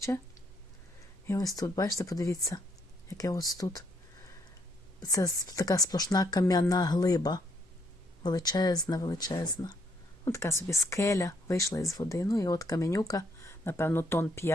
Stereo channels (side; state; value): both; normal; correlation 0.71